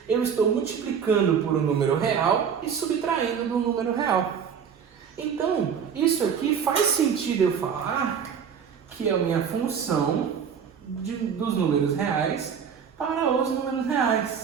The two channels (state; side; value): quieter; left; 7.3 dB